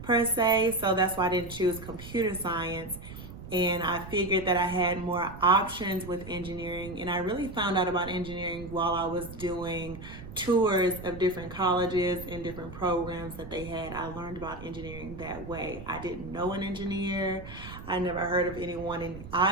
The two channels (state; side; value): noise; right; rumble, 13 dB below the sound